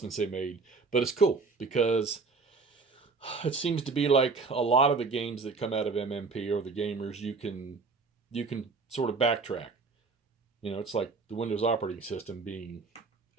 they made. But it's cool because it seems to be like a lot of the games that come out of MMP or the gamers, you can sort of backtrack. It's like the Windows operating system being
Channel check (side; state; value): left; quieter; 4.4 dB